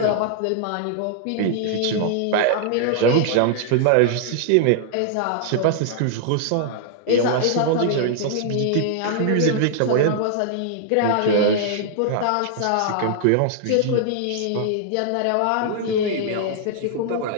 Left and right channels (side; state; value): both; different; correlation 0.00